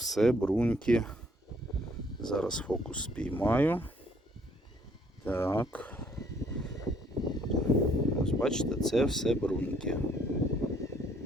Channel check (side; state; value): both; normal; correlation 0.64